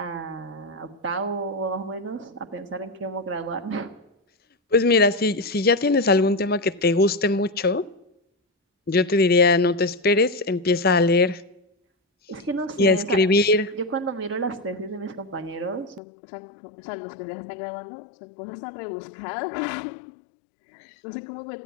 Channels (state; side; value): drops out; right; at 16.0 s